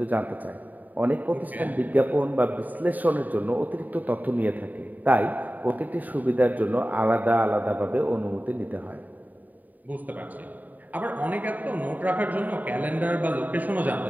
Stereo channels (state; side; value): late; left; 0.082 ms